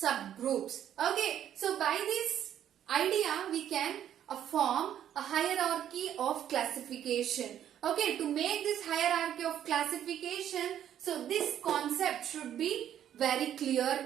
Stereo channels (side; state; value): left; quieter; 10.4 dB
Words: Okay, so by this idea we can form a hierarchy of classification. Okay, to make this hierarchy of classification, so this concept should be very clear